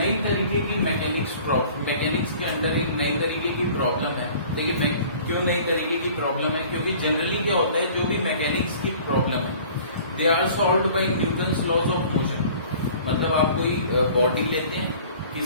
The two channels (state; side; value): inverted; both; correlation -0.48